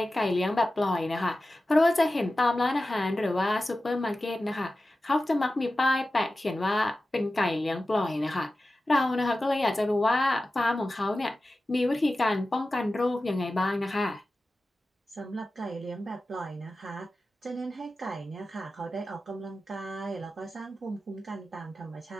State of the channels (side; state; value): both; normal; correlation 0.94